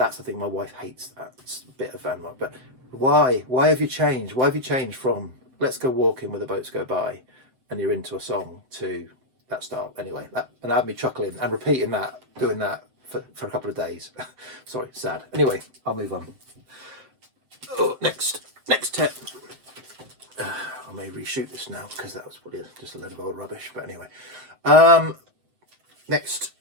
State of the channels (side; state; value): left; late; 7.7 ms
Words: the thing, my wife hates that bit of Van Morrison. But why have you changed? Why have you changed from "Let's go walking where the boats go by" and you're into a song to that style? Anyway, and had me chuckling and repeating that, doing that for a couple of days. Sorry, sad. Anyway, I'll move on. Oh, next tip. I may reshoot this now because that was probably just a load of old rubbish. But anyway, next